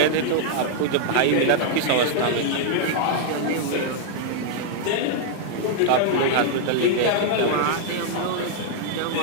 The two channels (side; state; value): both; different; correlation -0.01